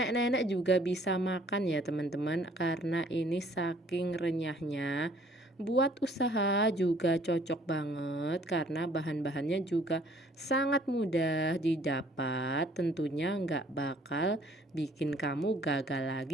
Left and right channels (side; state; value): both; normal; correlation 0.58